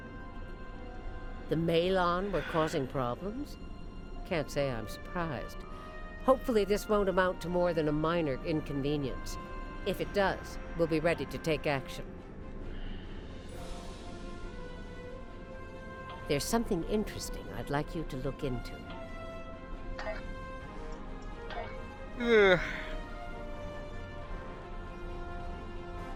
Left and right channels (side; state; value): both; identical; correlation 1.00